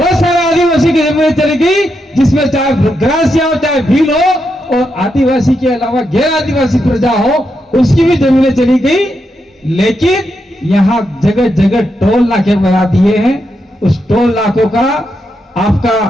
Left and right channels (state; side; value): normal; both; correlation 0.83